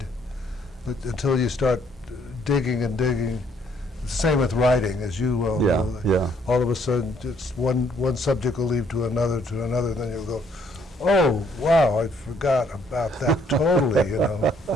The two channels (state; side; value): normal; both; correlation 0.67